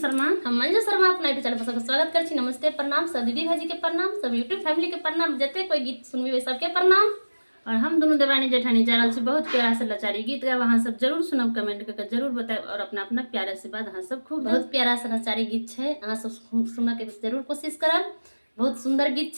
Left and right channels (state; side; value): inverted; both; correlation -1.00